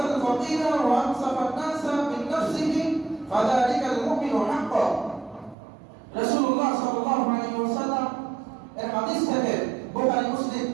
ফাকিরা ওয়া আনসাফা আন-নাসা মিন নাফসিহি ফাযালিকাল মুমিনু হাক্কান। রাসূলুল্লাহ সাল্লাল্লাহু আলাইহি ওয়াসাল্লাম এর হাদিস থেকে বুখারী, মুসলিম,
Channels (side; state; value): left; drops out; at 5.6 s